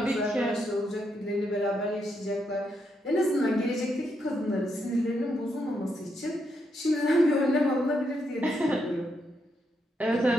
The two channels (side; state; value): both; normal; correlation 0.80